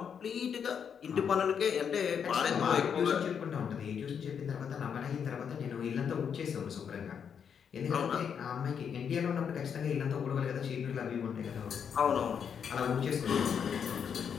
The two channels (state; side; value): quieter; right; 7.4 dB